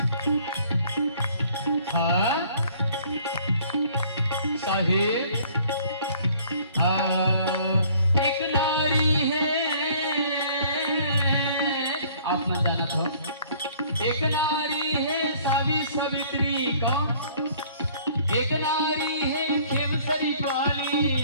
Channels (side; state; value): both; inverted; correlation -0.56